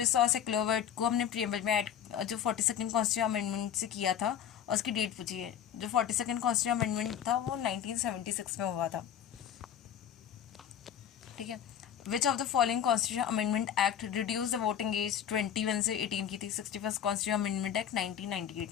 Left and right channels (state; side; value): quieter; right; 9.3 dB